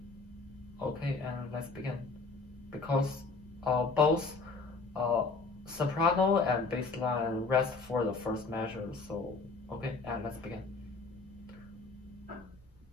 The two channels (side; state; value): right; quieter; 3.9 dB